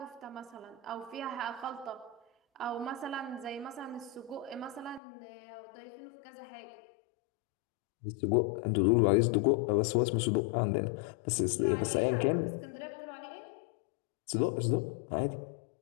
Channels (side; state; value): right; drops out; at 5.0 s